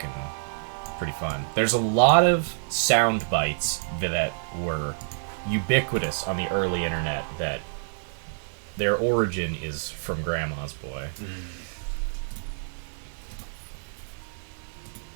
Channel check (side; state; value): left; silent; 57 dB below the other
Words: pretty fun. There's a lot of sound bites that were ubiquitous on the early internet that their origin is from Grandma's Boy.